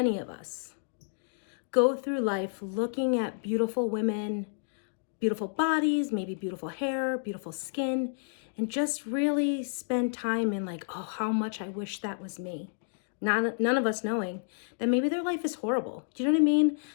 of us go through life looking at beautiful women, beautiful bodies, maybe beautiful hair, beautiful skin, and just really spend time in like, oh, how much I wish that was me. None of us knowing that maybe their life is horrible. Do you know what I mean?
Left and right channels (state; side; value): silent; right; digital silence